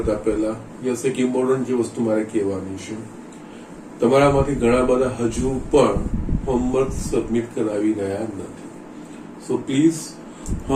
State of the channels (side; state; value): both; identical; correlation 1.00